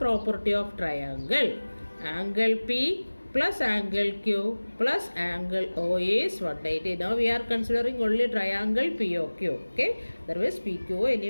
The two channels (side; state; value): both; inverted; correlation -1.00